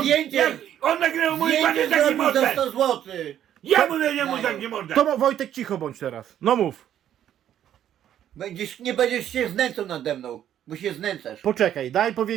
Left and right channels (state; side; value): quieter; left; 10.7 dB